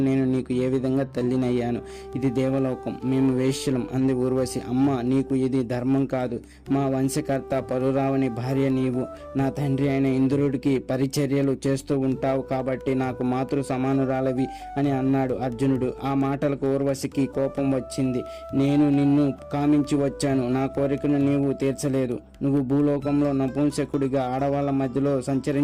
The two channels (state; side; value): identical; both; correlation 1.00